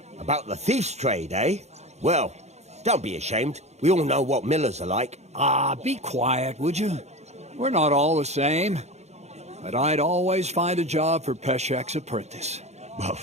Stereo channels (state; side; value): late; left; 0.32 ms